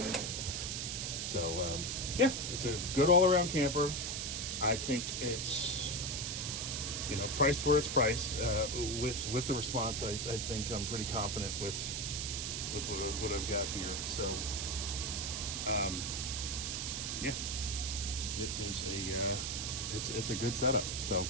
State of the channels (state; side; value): noise; right; hiss, 2 dB below the sound